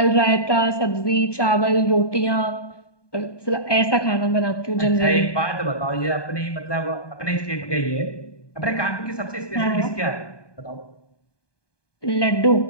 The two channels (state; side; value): late; right; 1.2 ms